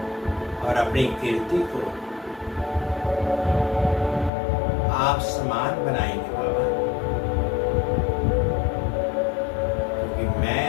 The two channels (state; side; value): drops out; right; at 4.3 s